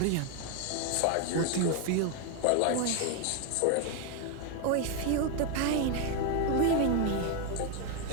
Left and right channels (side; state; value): both; different; correlation 0.01